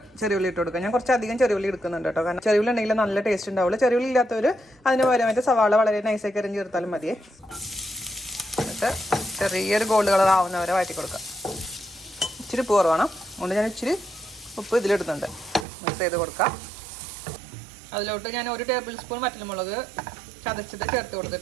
ചെറിയുള്ളി ഇട്ട് കൊടുക്കാം. ഞാൻ കുറച്ചധികം ചെറിയുള്ളി എടുക്കുന്നുണ്ട് കേട്ടോ. കാരണം ചെറിയുള്ളി ഉണ്ടെങ്കിൽ നല്ല ടേസ്റ്റ് ഉണ്ടാവുള്ളൂ. ചെറിയുള്ളി ഇല്ലാത്തവർ അതിന് പകരമായിട്ട് സവാള വളരെ നൈസാക്കി അരിഞ്ഞ് ചേർത്താലും മതിയേ. എന്നിട്ട് ചെറിയൊരു ഗോൾഡ് കളർ ആവുന്നവരെ വഴറ്റി കൊടുക്കാം. ഇച്ചിരി ഉപ്പ് കുറവാണ്, അതുകൊണ്ട് ഞാൻ ഇച്ചിരി ഉപ്പ് ഇതിലിടുന്നുണ്ട്. മിക്സ് ചെയ്ത് കൊടുക്കാം. അതിലോട്ട് ഞാൻ 1 ടേബിൾ സ്പൂൺ വറ്റൽമുളക് ചതച്ചത് ചേർത്ത്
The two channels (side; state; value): left; drops out; at 15.7 s